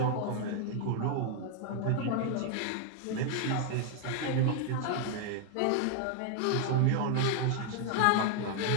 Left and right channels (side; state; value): both; different; correlation 0.00